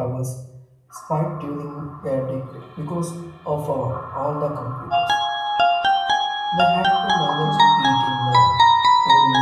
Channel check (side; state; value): both; identical; correlation 1.00